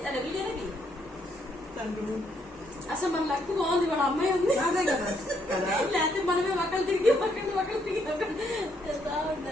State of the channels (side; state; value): both; normal; correlation 0.73